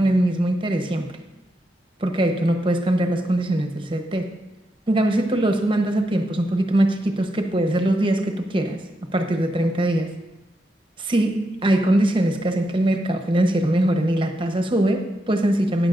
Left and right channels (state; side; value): normal; both; correlation 0.84